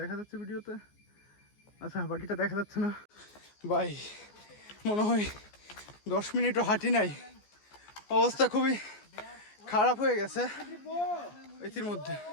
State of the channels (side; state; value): right; late; 14 ms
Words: দেখা যাচ্ছে ভিডিওতে। আচ্ছা, বাকিটা দেখা যাচ্ছে না। ভাই মনে হয় 10 মিনিটও হাঁটি নাই, অবস্থা খুবই খারাপ হয়ে গেছে এটির মধ্যে।